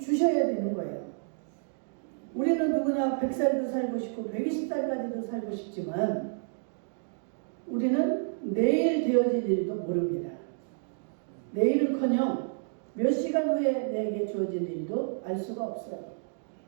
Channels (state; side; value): silent; left; digital silence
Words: 되는 거예요. 우리는 누구나 100살도 살고 싶고 120살까지도 살고 싶지만 우리는 내일 되어질 일도 모릅니다. 내일은커녕 몇 시간 후에 내게 주어질 일도 알 수가 없어요.